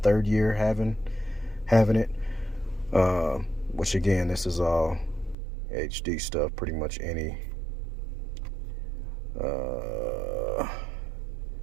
year having it, which again, this is all HD stuff. Pretty much any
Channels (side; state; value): left; drops out; at 5.4 s